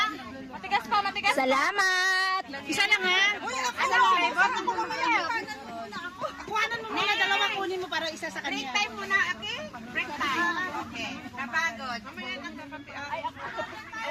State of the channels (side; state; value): both; identical; correlation 1.00